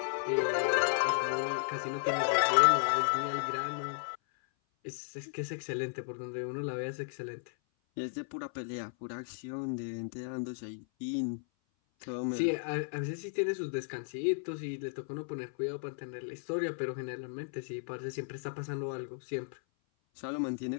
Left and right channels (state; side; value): silent; right; 55 dB below the other